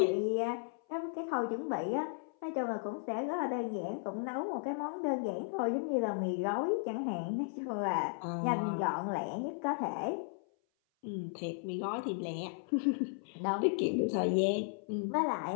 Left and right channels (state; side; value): silent; right; 54 dB below the other